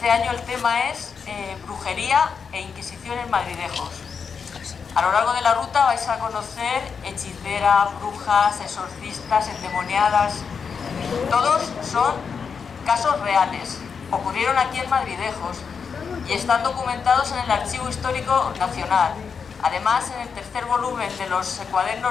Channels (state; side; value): quieter; right; 6.0 dB